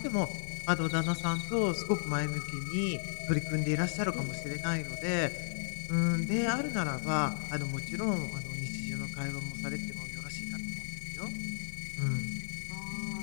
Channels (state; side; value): silent; right; digital silence